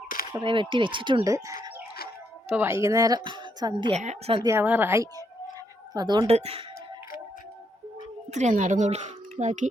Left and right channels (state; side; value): normal; both; correlation 0.76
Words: കുറേ വെട്ടി വെച്ചിട്ടുണ്ട്. ഇപ്പോൾ വൈകുന്നേരം സന്ധ്യ ആവാറായി. അപ്പം അതുകൊണ്ട് ഇത്രയും നടന്നുള്ളൂ. ബാക്കി